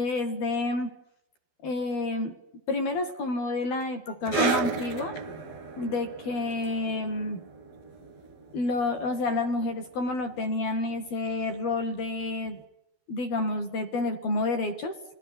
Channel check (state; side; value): late; right; 12 ms